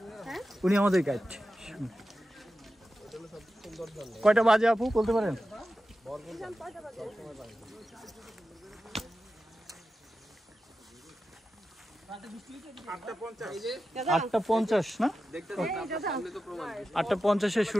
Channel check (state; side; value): normal; both; correlation 0.92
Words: হ্যাঁ উনি আমাদের গাইড। কয়টা বাজে আপু বলতে পারেন? 8:50 না? 8:50